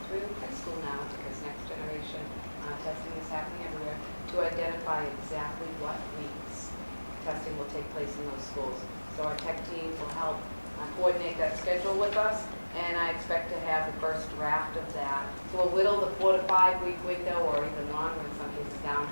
through high school now, because next generation testing is happening everywhere, to identify exactly what weeks testing will take place in those schools. So our tech team will help coordinate that schedule with us, and I expect to have the first draft of that. So we'll whittle the 4 to 5 week window, or even longer in some cases, down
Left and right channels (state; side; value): inverted; both; correlation -1.00